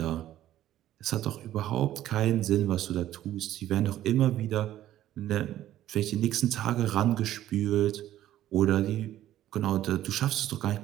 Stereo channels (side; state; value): left; quieter; 13.1 dB